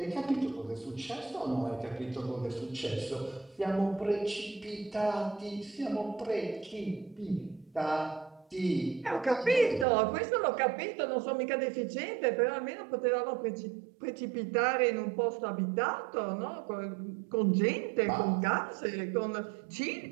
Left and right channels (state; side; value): drops out; left; at 9.9 s